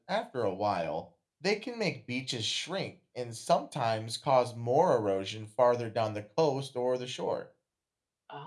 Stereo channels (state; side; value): identical; both; correlation 1.00